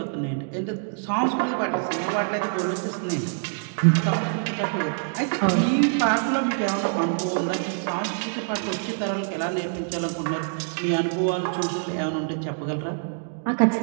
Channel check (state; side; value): silent; left; digital silence